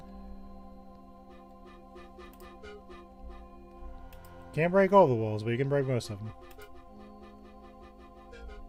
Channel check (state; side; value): identical; both; correlation 1.00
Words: Can't break all the walls, but you can break most of them.